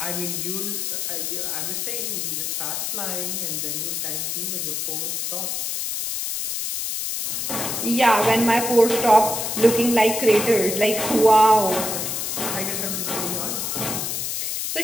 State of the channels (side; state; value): left; noise; hiss, 2 dB below the sound